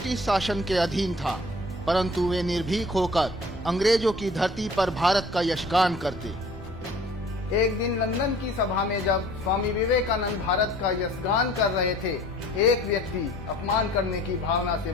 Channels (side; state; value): both; normal; correlation 0.50